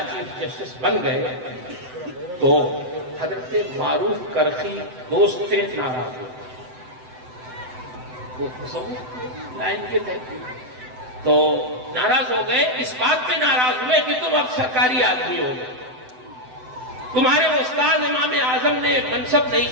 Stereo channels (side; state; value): left; late; 7.9 ms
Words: چیف جسٹس بن گئے، تو حضرت معروف کرخی دوست تھے، ناراض ہوئے۔ وہ لائن کے تھے تو ناراض ہو گئے، اس بات پہ ناراض ہوئے کہ تم اب سرکاری آدمی ہو گئے، تمہارے استاد امام اعظم نے منصب نہیں